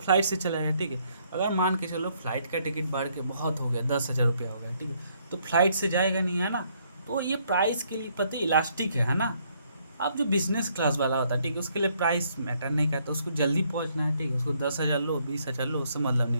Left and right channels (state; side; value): inverted; both; correlation -0.69